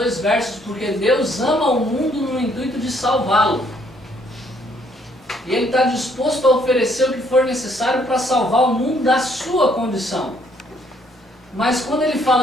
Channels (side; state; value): both; normal; correlation 0.67